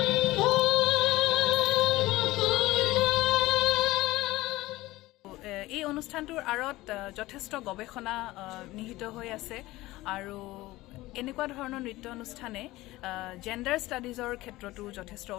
এই অনুষ্ঠানটোৰ আঁৰত যথেষ্ট গৱেষণা নিহিত হৈ আছে আৰু এনেকুৱা ধৰণৰ নৃত্য অনুষ্ঠানে জেণ্ডাৰ ষ্টাডিজৰ ক্ষেত্ৰতো যথেষ্ট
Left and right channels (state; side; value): quieter; right; 18.4 dB